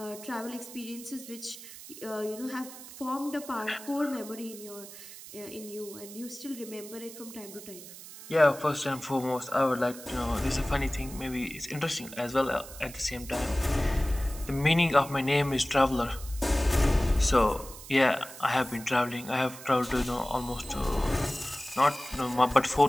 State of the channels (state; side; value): noise; right; hiss, 15 dB below the sound